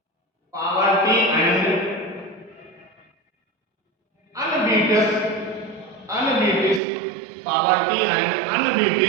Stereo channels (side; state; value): left; drops out; at 6.8 s